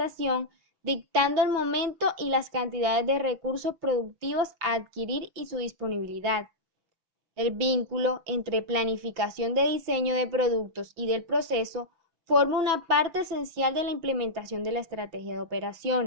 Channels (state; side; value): late; left; 6.1 ms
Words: dictando el momento y las cantidades de recursos productivos a adquirir y su disponibilidad. El vínculo entre planificación de diseño de productos y del proceso forma una parte esencial de la implementación de la estrategia de